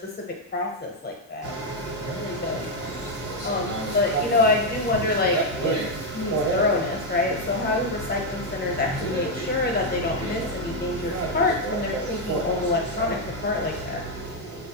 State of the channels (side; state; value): both; normal; correlation 0.02